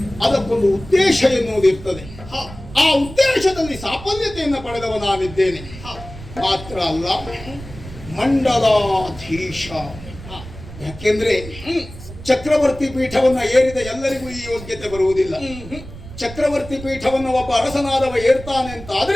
ಅದಕ್ಕೊಂದು ಉದ್ದೇಶ ಎನ್ನುವುದಿರ್ತದೆ. ಆ ಉದ್ದೇಶದಲ್ಲಿ ಸಾಫಲ್ಯತೆಯನ್ನು ಪಡೆದವ ನಾನಿದ್ದೇನೆ. ಮಾತ್ರ ಅಲ್ಲ, ಮಂಡಲಾಧೀಶ. ಯಾಕೆಂದ್ರೆ ಚಕ್ರವರ್ತಿ ಪೀಠವನ್ನ ಏರಿದ ಎಲ್ಲರಿಗೂ ಈ ಯೋಗ್ಯತೆ ಬರುವುದಿಲ್ಲ. ಚಕ್ರವರ್ತಿ ಪೀಠವನ್ನು ಒಬ್ಬ ಅರಸನಾದವ ಏರ್ತಾನೆ ಅಂತ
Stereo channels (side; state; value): right; noise; rumble, 14 dB below the sound